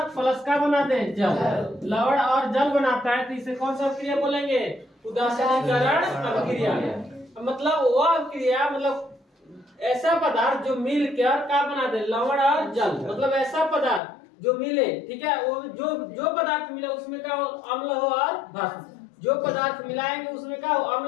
प्लस क्या बना दे, जल। लवण और जल बनाता है, तो इसे कौन सा अभिक्रिया बोलेंगे, उदासीनीकरण अभिक्रिया। मतलब वो अभिक्रिया, मतलब ऐसा पदार्थ जो मिल कर क्या बना दे, लवण और जल। मतलब ऐसा पदार्थ जो मिले, ठीक है, वो जो पदार्थ मिले उसमें क्या हो, अम्ल हो और भस्म। जो पदार्थ मिलाएंगे उसमें क्या हो,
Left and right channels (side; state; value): right; drops out; at 14.0 s